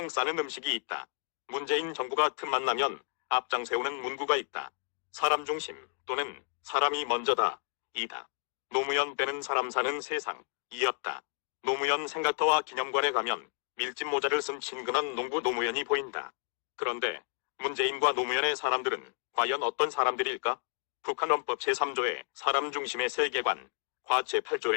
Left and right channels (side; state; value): right; silent; 55 dB below the other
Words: 싸는 음식이 있다. 문재인 정부가 틈만 나면 앞장 세우는 문구가 있다. 사람 중심 또는 사람이 먼저다. 이다. 노무현 빼는 사람 사는 세상. 이었다. 노무현 생각터와 기념관에 가면 밀짚 모자를 쓴 친근한 농부 노무현이 보인다. 그런데 문재인과 노무현의 사람들은 과연 어떤 사람들일까? 북한 헌법 제3조의 사람 중심의 세계관, 과